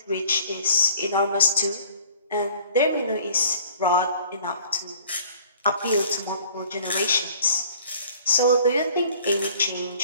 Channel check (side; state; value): both; inverted; correlation -0.53